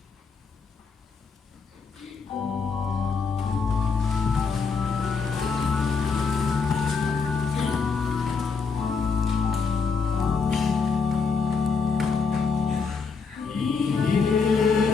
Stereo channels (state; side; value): quieter; right; 5.1 dB